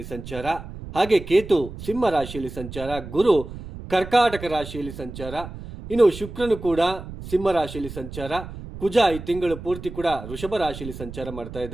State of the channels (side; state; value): right; noise; rumble, 12 dB below the sound